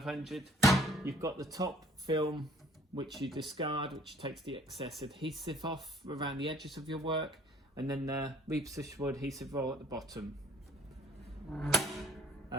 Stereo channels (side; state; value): both; normal; correlation 0.57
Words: You've got the top film, which you discard, which takes the excess adhesive off around the edges of your work, and then the repositionable adhesive roll at the bottom.